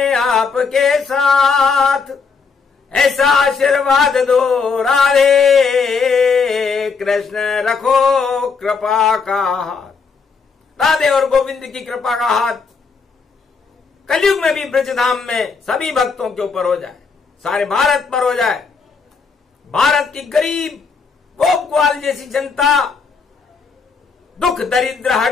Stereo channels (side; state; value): right; quieter; 5.2 dB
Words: आपके साथ, ऐसा आशीर्वाद दो राधे कृष्ण, रखो कृपा का हाथ। राधे और गोविंद की कृपा का हाथ कलयुग में भी ब्रजधाम में सभी भक्तों के ऊपर हो जाए, सारे भारत पर हो जाए। भारत की गरीब गोप ग्वाल जैसी जनता, दुख दरिद्र